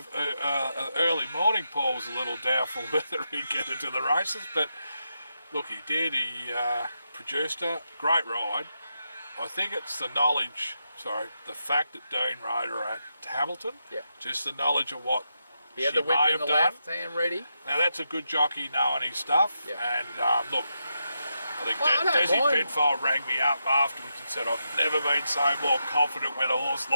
early morning, Paul was a little doubtful whether he'd get into the races. But look, he did. He produced a great ride. I think it's the fact that Dean rode her at Hamilton. Yeah. Just the knowledge of what he had the whip in the left hand ready. Now that's a good jockey knowing his stuff. Yeah. And look, I think Desi Penfold rang me up afterwards and said, I've never been so more confident when a horse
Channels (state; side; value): inverted; both; correlation -0.85